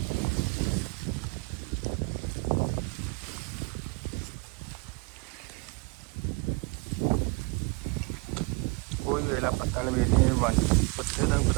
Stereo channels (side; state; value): left; quieter; 29.8 dB